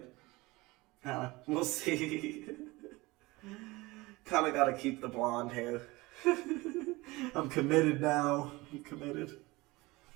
We'll see. Kind of gotta keep the blonde hair. I'm committed now. I'm committed.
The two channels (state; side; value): quieter; left; 21.9 dB